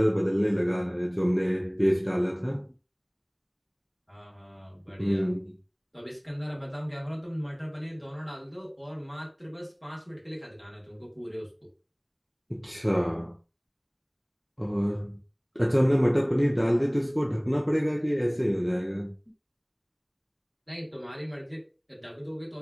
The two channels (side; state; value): both; identical; correlation 1.00